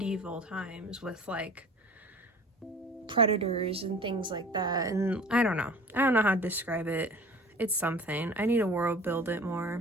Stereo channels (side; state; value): both; normal; correlation 0.43